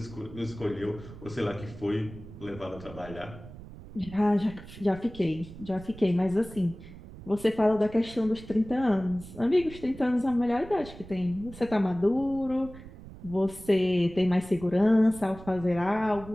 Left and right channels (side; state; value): right; noise; rumble, 16 dB below the sound